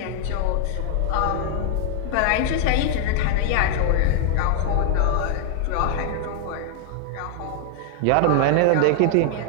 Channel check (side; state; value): both; different; correlation 0.00